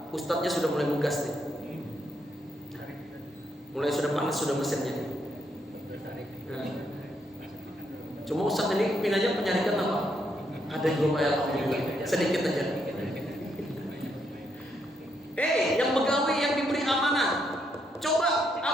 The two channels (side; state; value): both; normal; correlation 0.77